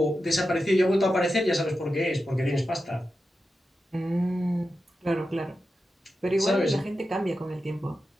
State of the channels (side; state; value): both; normal; correlation 0.90